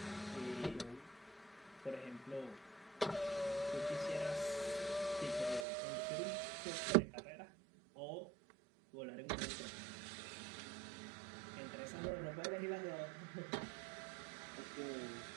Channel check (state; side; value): drops out; left; at 5.7 s